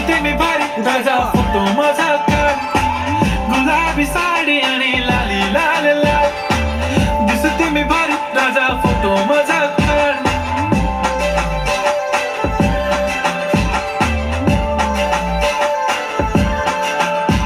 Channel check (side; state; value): both; identical; correlation 1.00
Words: मी भारी ताजा फोटो माझा काढ गुलाबी साडी आणि लाली लाल लाल दिसते मी भारी ताजा फोटो माझा काढ